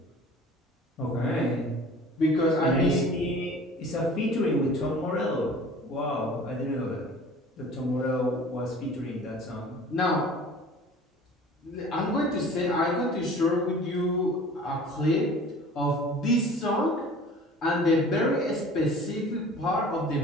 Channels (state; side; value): normal; both; correlation 0.45